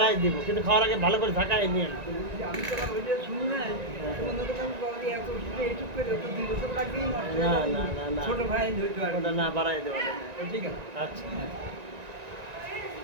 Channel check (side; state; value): left; late; 1.9 ms